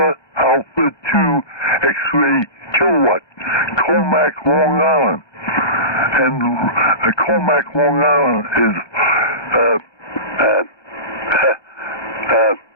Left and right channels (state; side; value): late; right; 1.2 ms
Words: 2 X-ray Kilowatt, Comac, Long Island. And Comac, Long Island is